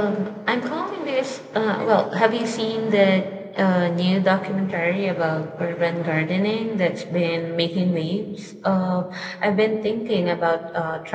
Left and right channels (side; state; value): both; identical; correlation 1.00